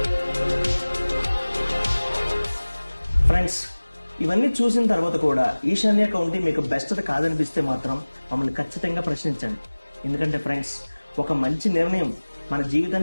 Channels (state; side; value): inverted; both; correlation -1.00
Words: ఫ్రెండ్స్, ఇవన్నీ చూసిన తర్వాత కూడా ఈశాన్య కౌంటీ మీకు బెస్ట్ కాదనిపిస్తే మాత్రం మమ్మల్ని ఖచ్చితంగా ప్రశ్నించండి. ఎందుకంటే ఫ్రెండ్స్, ఒక మంచి నిర్ణయం మన